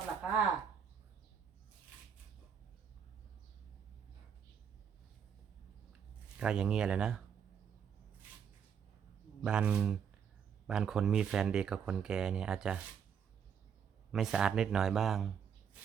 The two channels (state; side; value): quieter; left; 7.5 dB